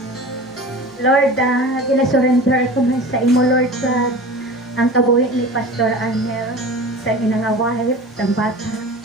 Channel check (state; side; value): normal; both; correlation 0.36